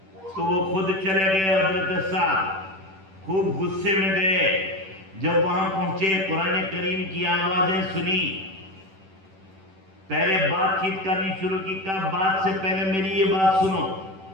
تو وہ خود چلے گئے، حضرت سعد خوب غصے میں گئے۔ جب وہاں پہنچے قرآن کریم کی آوازیں سنی، پہلے بات چیت کرنی شروع کی، کہا بات سے پہلے میری یہ بات سنو،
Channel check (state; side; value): late; left; 10 ms